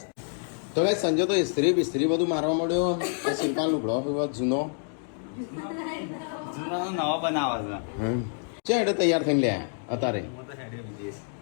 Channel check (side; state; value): right; silent; 60 dB below the other